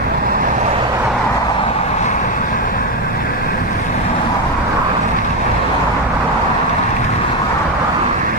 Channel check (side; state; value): both; normal; correlation 0.10